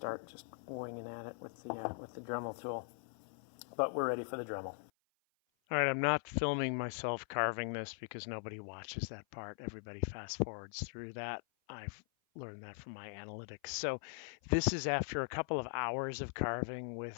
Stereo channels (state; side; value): silent; right; 51 dB below the other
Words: just winging at it with the Dremel tool. But we're ready for the Dremel. All right, I'm not filming myself carving this because nobody watches that part. Everybody fast forwards through that. I've learned that from my analytics. So this is after a couple of hours of carving with